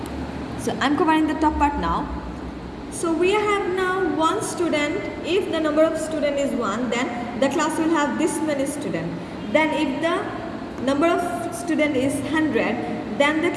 So I'm covering the top part now. So we have now 1 student. If the number of student is 1, then the class will have this many student. Then if the number of student is 100, then the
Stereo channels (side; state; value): both; identical; correlation 1.00